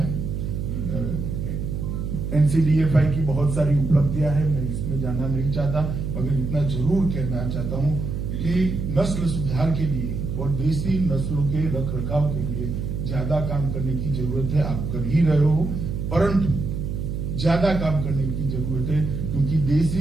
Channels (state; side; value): noise; right; hum, 3 dB below the sound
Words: एनसीडीएफआई की बहुत सारी उपलब्धियां हैं, मैं इसमें जाना नहीं चाहता, मगर इतना जरूर कहना चाहता हूं कि नस्ल सुधार के लिए और देसी नस्लों के रख रखाव के लिए ज्यादा काम करने की जरूरत है। आप कर ही रहे हो, परंतु ज्यादा काम करने की जरूरत है, क्योंकि